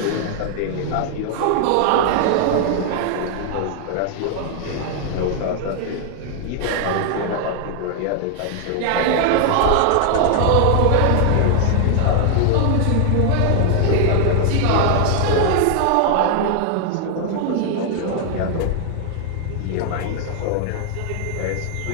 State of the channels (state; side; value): different; both; correlation 0.00